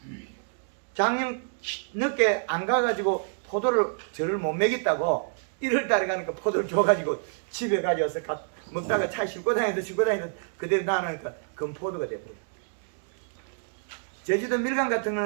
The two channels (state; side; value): silent; left; digital silence